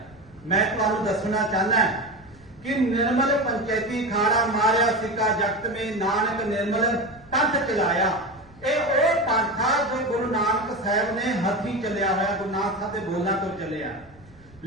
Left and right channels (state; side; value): noise; right; rumble, 26 dB below the sound